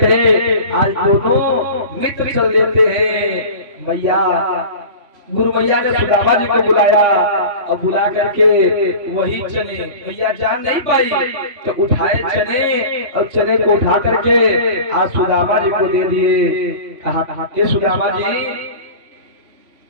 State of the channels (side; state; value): left; late; 3.1 ms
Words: है, आज दोनों मित्र चल देते हैं। मैया गुरु मैया ने सुदामा जी को बुलाया और बुला करके वही चने मैया जान नहीं पाई तो उठाए चने और चने को उठा करके आज सुदामा जी को दे दिए। कहा ये सुदामा जी